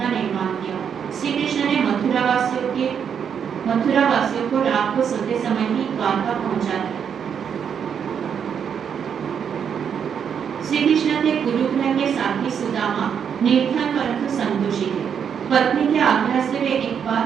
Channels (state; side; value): quieter; left; 7.6 dB